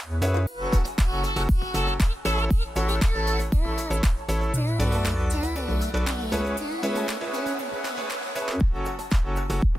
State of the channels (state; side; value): normal; both; correlation 0.92